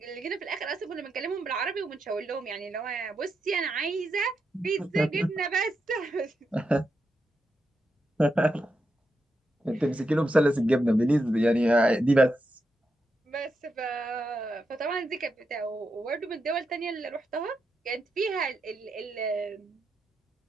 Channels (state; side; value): normal; both; correlation 0.85